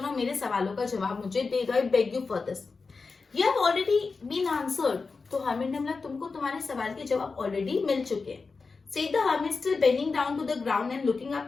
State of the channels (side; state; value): right; quieter; 4.4 dB